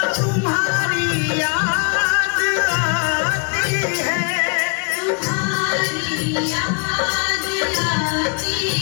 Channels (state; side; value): quieter; right; 37.2 dB